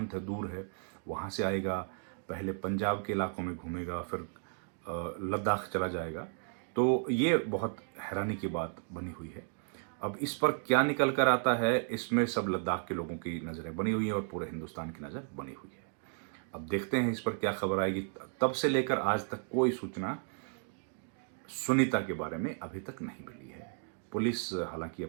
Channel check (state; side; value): silent; left; 55 dB below the other